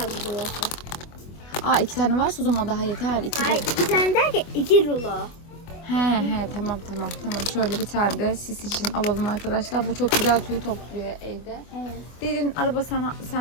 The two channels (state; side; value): late; right; 24 ms